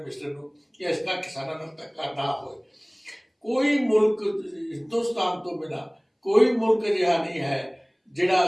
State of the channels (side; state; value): both; identical; correlation 1.00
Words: ਨੂੰ, ਕਿ ਇਸ ਤਰ੍ਹਾਂ ਕਿਸਾਨਾਂ ਨਾਲ ਧੱਕਾ ਨਾ ਹੋਏ। ਕੋਈ ਮੁਲਕ ਹਿੰਦੁਸਤਾਨ ਤੋਂ ਬਿਨਾਂ ਕੋਈ ਮੁਲਕ ਅਜਿਹਾ ਨਹੀਂ ਹੈ